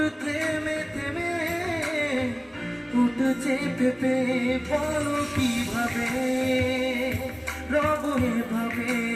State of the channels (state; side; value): identical; both; correlation 1.00